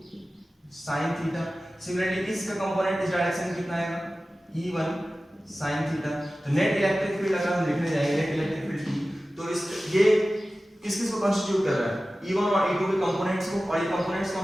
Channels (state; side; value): normal; both; correlation 0.96